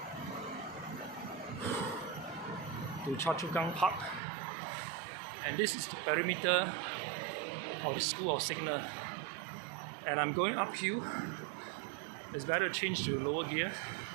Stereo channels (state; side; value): drops out; left; at 4.2 s